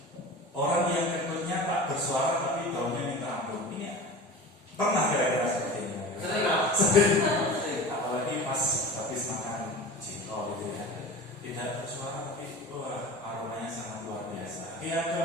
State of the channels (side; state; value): both; normal; correlation 0.34